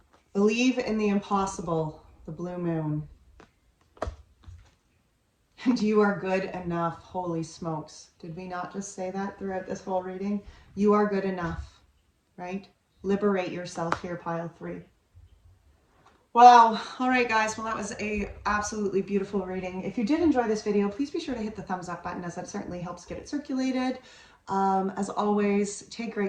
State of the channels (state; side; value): identical; both; correlation 1.00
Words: Believe in the impossible. The blue moon. And you are good enough. Holy smokes. Did we not just say that throughout this whole reading? You are good enough, right? Liberate yourself here, Pile 3. Wow. All right, guys. Well, that was a absolutely beautiful reading. If you did enjoy this video, please be sure to hit the thumbs up button, as that certainly helps get it circulated. As always, take